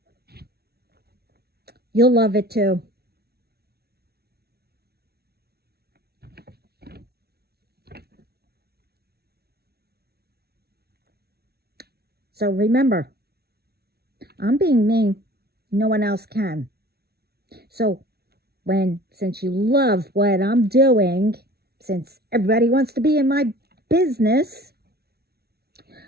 You'll love it too. So remember, I'm being me. No one else can. So since you love what I'm doing, since everybody wants to be in my business,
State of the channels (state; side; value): late; left; 0.46 ms